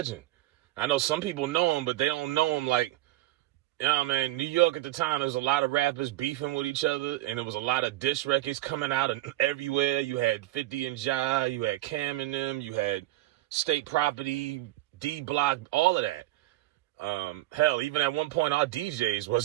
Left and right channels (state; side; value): quieter; left; 16.6 dB